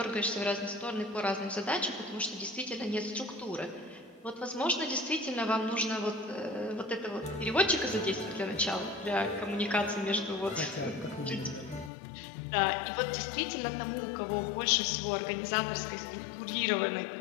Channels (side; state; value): right; drops out; at 11.9 s